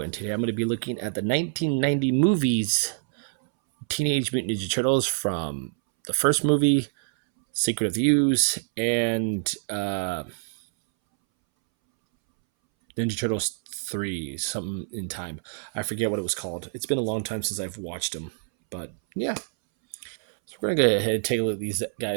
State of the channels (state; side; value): silent; left; 61 dB below the other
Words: and today I'm going to be looking at the 1990 movies, Teenage Mutant Ninja Turtles, from the first movie, Secret of the Ooze, and Ninja Turtles 3, something in time. I forget what it was called. It's been a long time since I've watched them, but yeah. So we're going to go ahead and take a look at these